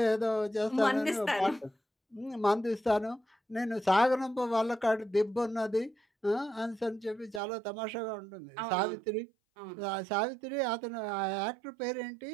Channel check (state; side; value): drops out; left; at 7.4 s